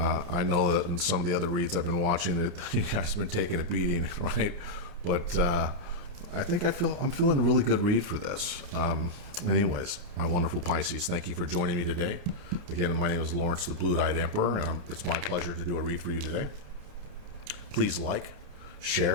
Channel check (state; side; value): late; left; 29 ms